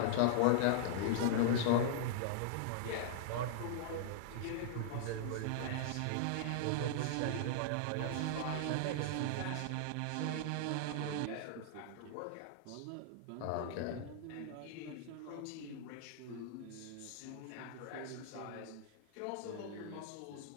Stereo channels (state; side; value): different; both; correlation -0.01